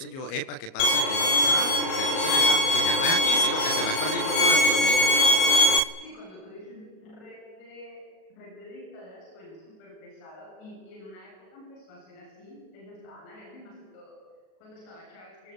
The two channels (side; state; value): right; late; 37 ms